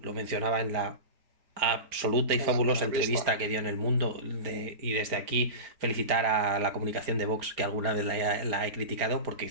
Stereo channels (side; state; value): left; late; 4.3 ms